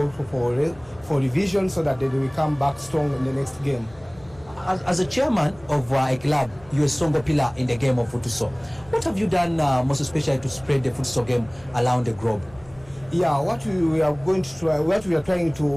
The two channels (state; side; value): noise; left; hum, 24 dB below the sound